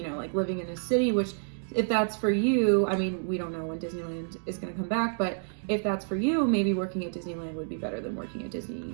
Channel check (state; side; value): silent; left; digital silence